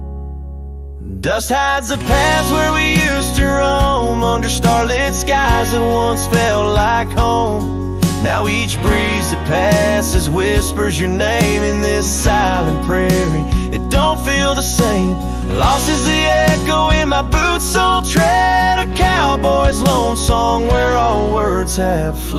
Dust hides the paths where we used to roam, under starlit skies that once felt like home. Now each breeze that passes whispers your name in this silent prairie. It don't feel the same. Lost is the echo in my boots, so tread a cowboy's lone song where all words have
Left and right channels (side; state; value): both; identical; correlation 1.00